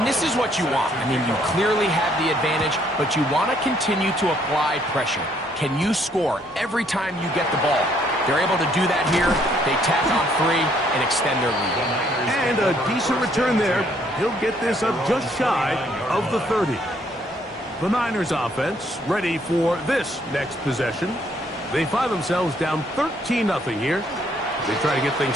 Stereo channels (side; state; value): both; normal; correlation 0.67